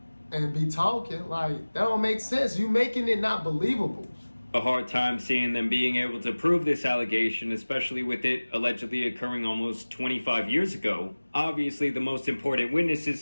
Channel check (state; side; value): inverted; both; correlation -1.00